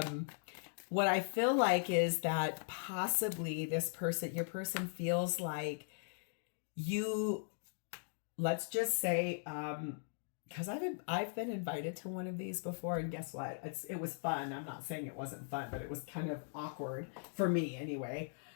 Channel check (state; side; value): silent; right; digital silence